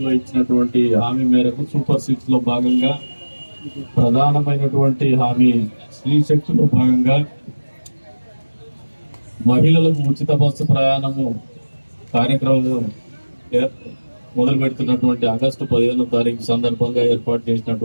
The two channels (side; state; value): both; inverted; correlation -1.00